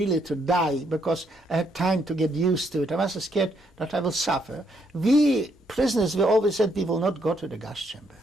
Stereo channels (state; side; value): normal; both; correlation 0.74